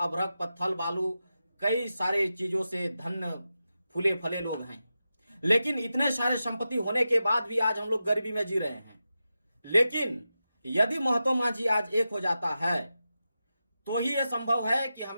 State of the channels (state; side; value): inverted; both; correlation -0.91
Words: पत्थल, बालू, कई सारे चीजों से धन्य फूले फले लोग हैं। लेकिन इतने सारे संपत्ति होने के बाद भी आज हम लोग गरीबी में जी रहे हैं। लेकिन यदि महतो माझी आज एक हो जाता है तो ही यह संभव है कि